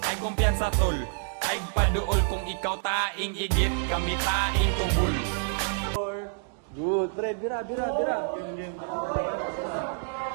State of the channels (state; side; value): silent; left; digital silence